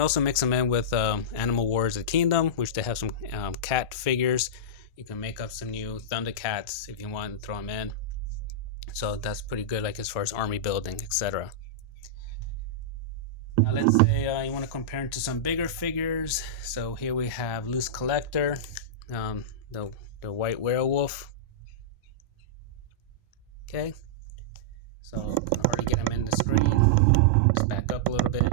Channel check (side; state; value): both; normal; correlation -0.10